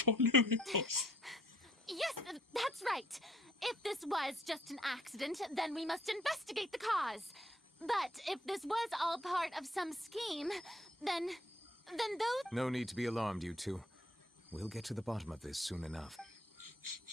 Yes, that's right. If this was just an accident, then we must investigate the cause. But if this was all part of some scheme, then those... No need to be alarmed, you two. We'll get to the bottom of this soon enough.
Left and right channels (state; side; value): normal; both; correlation 0.64